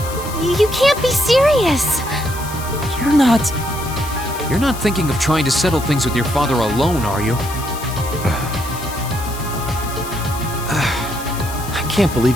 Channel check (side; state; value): left; noise; hiss, 13 dB below the sound